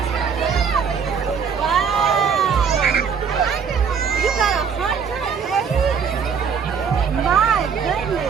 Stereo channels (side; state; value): left; quieter; 6.5 dB